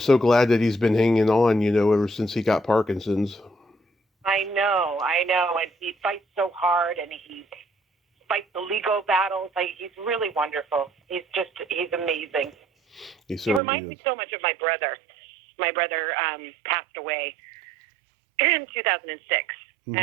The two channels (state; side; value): drops out; left; at 13.6 s